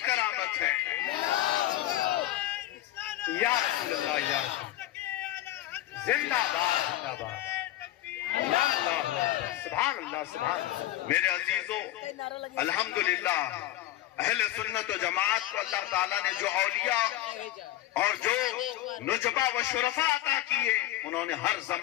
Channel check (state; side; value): quieter; right; 14.7 dB